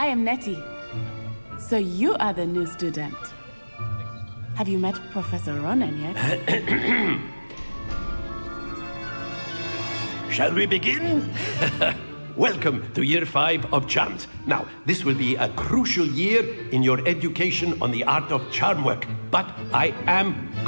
am Nettie. So you are the new student. Have you met Professor Ronan yet? Shall we begin? Welcome to Year 5 of Charms. Now, this will be a crucial year in your education on the art of charm work, but I am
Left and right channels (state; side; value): inverted; both; correlation -1.00